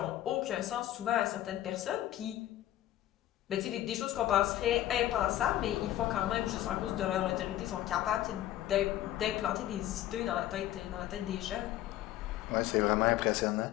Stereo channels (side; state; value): right; quieter; 13.4 dB